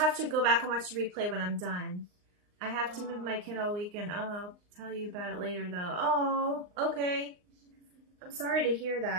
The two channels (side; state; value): left; late; 39 ms